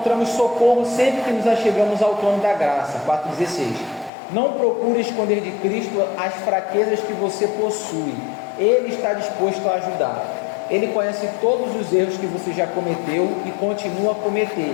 socorro sempre que nos achegamos ao trono da graça. 4,16. Não procure esconder de Cristo as fraquezas que você possui. Ele está disposto a ajudar. Ele conhece todos os erros que você já cometeu e continua a cometer.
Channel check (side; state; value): right; drops out; at 4.1 s